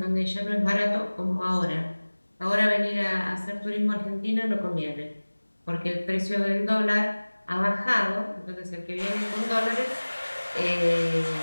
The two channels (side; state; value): both; inverted; correlation -1.00